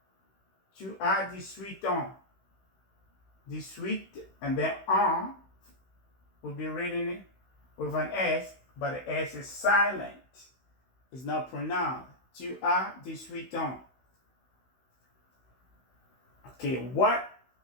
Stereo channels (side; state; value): right; late; 16 ms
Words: Tu as 18 ans. 18, and then ans will be written with an S, but the S is silent. It's not pronounced. Tu as 18 ans. Okay, what